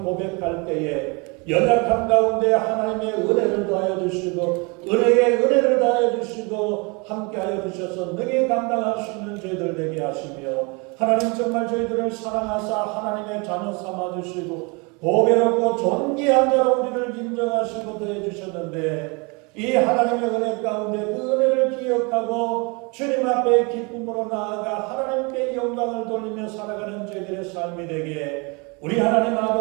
고백할 때에 연약함 가운데 하나님의 은혜를 더하여 주시고 은혜에 은혜를 더하여 주시고 함께하여 주셔서 능히 감당할 수 있는 저희들 되게 하시며 하나님 정말 저희들을 사랑하사 하나님의 자녀 삼아 주시고 보배롭고 존귀한 자로 우리를 인정하시고 더해주셨는데 이 하나님의 은혜 가운데 그 은혜를 기억하고 주님 앞에 기쁨으로 나아가 하나님께 영광을 돌리며 살아가는 저희들의 삶이 되게 우리 하나님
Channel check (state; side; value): quieter; left; 30.0 dB